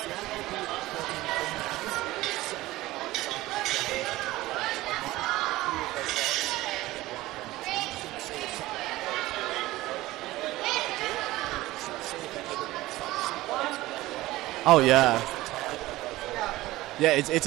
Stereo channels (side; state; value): left; quieter; 17.7 dB